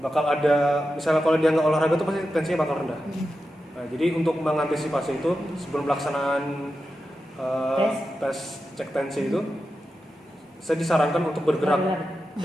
ada, misalnya kalau dia nggak olahraga tuh pasti tensinya bakal rendah. Nah, jadi untuk mengantisipasi itu sebelum pelaksanaan tes cek tensi itu, saya disarankan untuk bergerak,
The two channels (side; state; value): both; normal; correlation 0.90